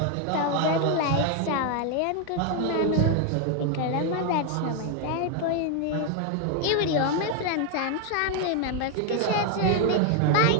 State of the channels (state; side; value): different; both; correlation 0.01